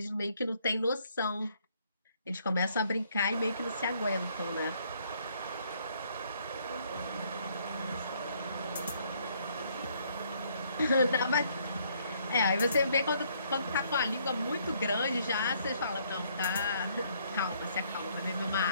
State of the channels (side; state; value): both; inverted; correlation -0.67